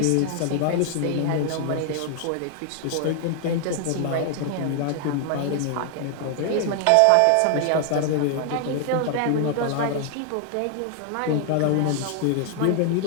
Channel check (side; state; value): both; different; correlation 0.00